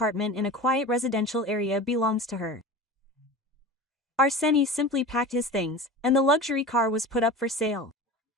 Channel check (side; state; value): both; normal; correlation 0.33